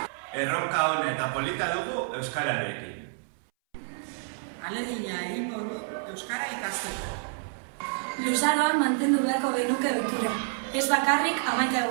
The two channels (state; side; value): silent; left; 59 dB below the other